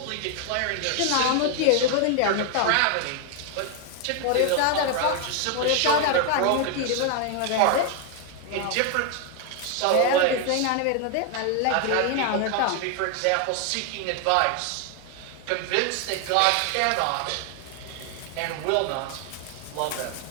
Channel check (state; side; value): different; both; correlation 0.01